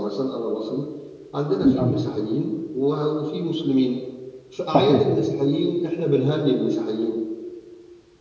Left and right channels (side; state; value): both; identical; correlation 1.00